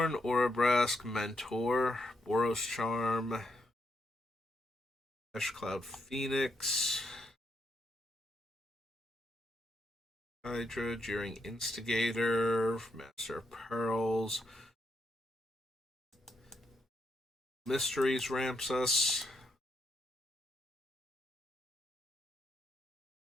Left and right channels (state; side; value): normal; both; correlation 0.79